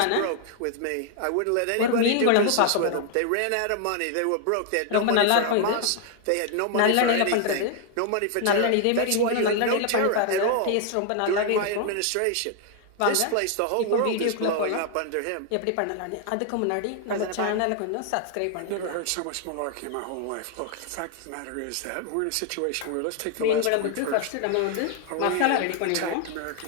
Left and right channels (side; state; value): both; different; correlation 0.00